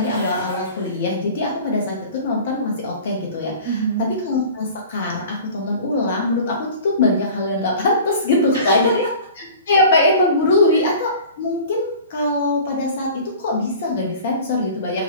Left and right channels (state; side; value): inverted; both; correlation -0.41